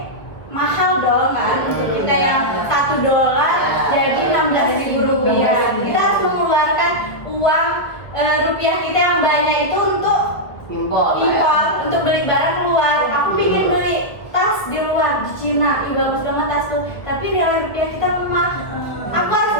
mahal dong kan, untuk kita yang $1 jadi 16.000 rupiah. Kita harus mengeluarkan uang rupiah kita yang banyak itu untuk Impor, untuk beli barang keluar. Aku ingin beli tas di luar di Cina, bagus banget tas tuh, tapi nilai rupiah kita lemah. Aku harus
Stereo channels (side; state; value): right; late; 1.6 ms